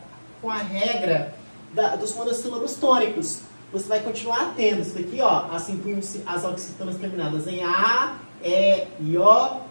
com a regra dos monossílabos tônicos. Você vai continuar tendo isso daqui, ó, acentuam-se as oxítonas terminadas em A, E e O,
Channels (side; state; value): both; inverted; correlation -1.00